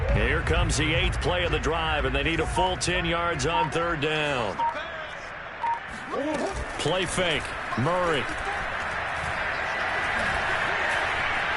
Here comes the 8th play of the drive, and they need a full 10 yards on third down. Play fake. Murray.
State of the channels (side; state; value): both; identical; correlation 1.00